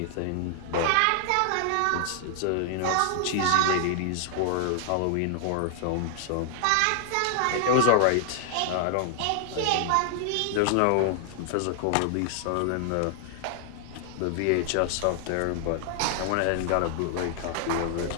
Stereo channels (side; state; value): both; different; correlation 0.00